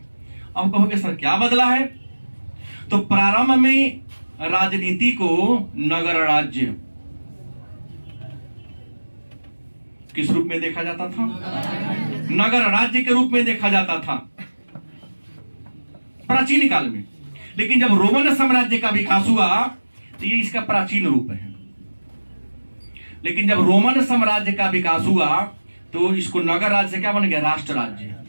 अब कहोगे सर क्या बदला है? तो प्रारंभ में राजनीति को नगर राज्य किस रूप में देखा जाता था? नगर राज्य के रूप में देखा जाता था प्राचीन काल में। लेकिन जब रोमन साम्राज्य का विकास हुआ तो ये इसका प्राचीन रूप है। लेकिन जब रोमन साम्राज्य का विकास हुआ तो इसको नगर राज्य से क्या बन गया? राष्ट्र राज्य।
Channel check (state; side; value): inverted; both; correlation -1.00